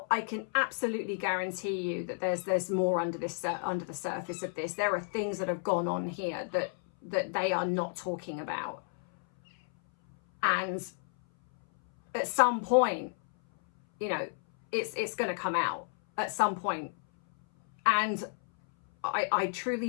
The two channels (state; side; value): silent; right; 57 dB below the other